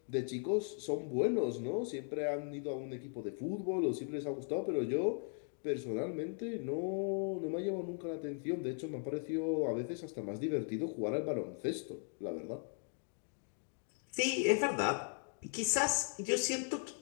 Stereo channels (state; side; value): silent; right; 52 dB below the other